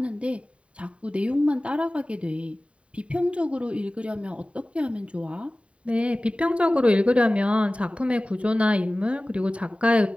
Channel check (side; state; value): left; late; 0.062 ms